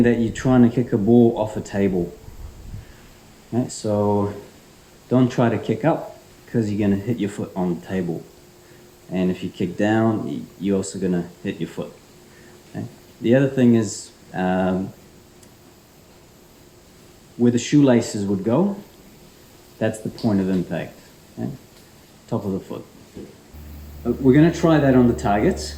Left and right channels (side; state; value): both; identical; correlation 1.00